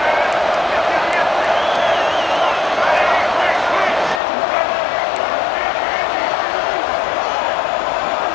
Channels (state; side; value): drops out; right; at 4.2 s